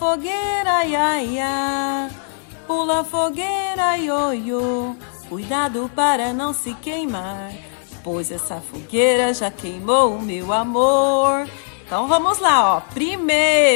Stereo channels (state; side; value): silent; right; 66 dB below the other